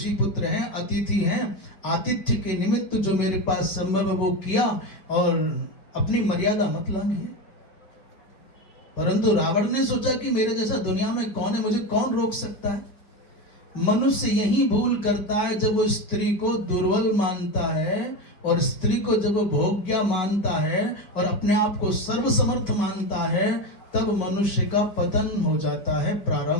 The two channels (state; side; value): late; right; 5.2 ms